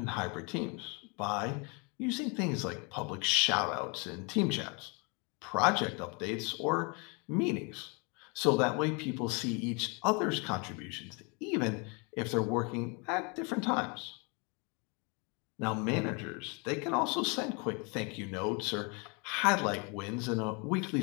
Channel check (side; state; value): right; quieter; 32.2 dB